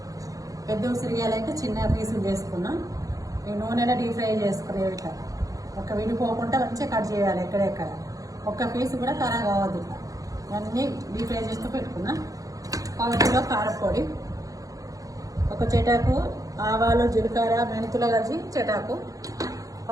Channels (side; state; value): left; late; 0.17 ms